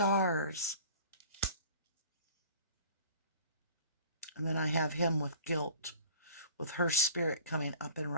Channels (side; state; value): both; inverted; correlation -0.45